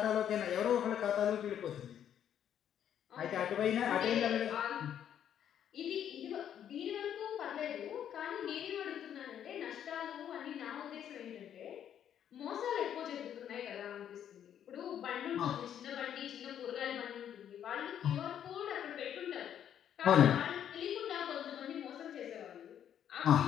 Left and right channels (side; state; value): right; quieter; 9.7 dB